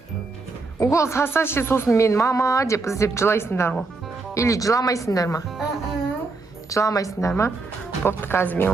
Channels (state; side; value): quieter; left; 3.8 dB